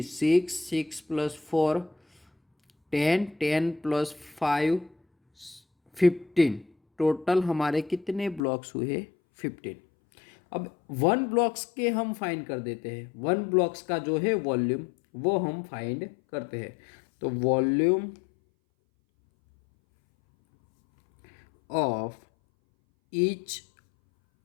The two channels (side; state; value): right; drops out; at 8.4 s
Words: 6, 6 + 4 10, 10 + 5 15। टोटल हमारे कितने ब्लॉक्स हुए, 15। अब 1 ब्लॉक्स के हम फाइंड कर देते हैं, 1 ब्लॉक्स का जो है वॉल्यूम वो हम फाइंड करते हैं। तो volume of each